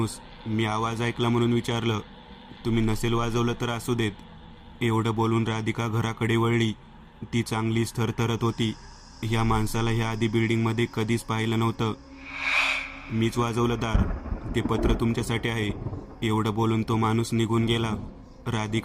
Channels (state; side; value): identical; both; correlation 1.00